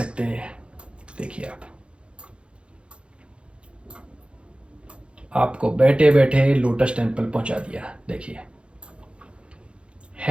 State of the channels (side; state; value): left; late; 0.057 ms